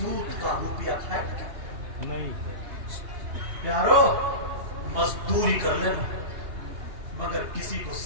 کا روپیہ کھائے نہیں. پیارو مزدوری کر لینا مگر کسی کو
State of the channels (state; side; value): late; left; 2.8 ms